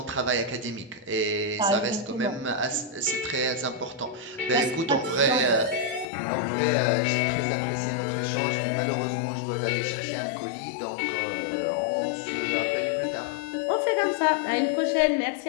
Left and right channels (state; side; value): drops out; right; at 6.1 s